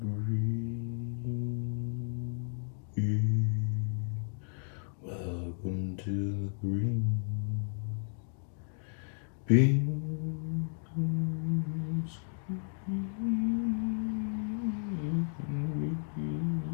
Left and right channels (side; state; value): right; silent; 55 dB below the other